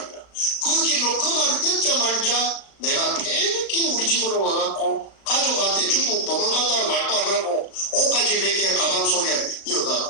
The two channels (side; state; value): right; late; 36 ms